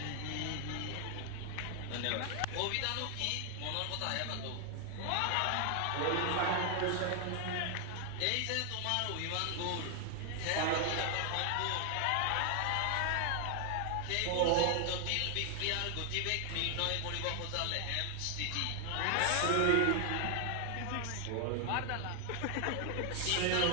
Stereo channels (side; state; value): both; different; correlation 0.00